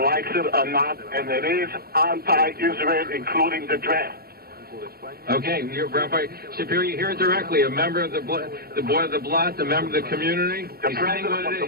it or not, and it is anti-Israel, including the draft. Okay, Rabbi Shapiro, you hear it directly. A member of the board of the Blad, a member of the community. The president of the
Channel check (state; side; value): late; left; 0.44 ms